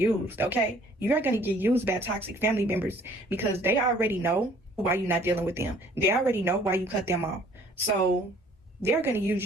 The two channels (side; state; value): both; normal; correlation 0.56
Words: okay? You are going to get used by toxic family members, because they already know why you're not dealing with them. They already know why you cut them off. So they're going to use